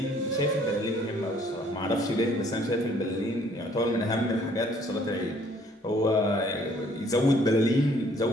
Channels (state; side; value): normal; both; correlation 0.61